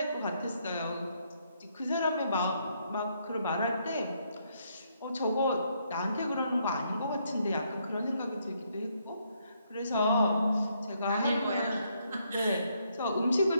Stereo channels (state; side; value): inverted; both; correlation -0.73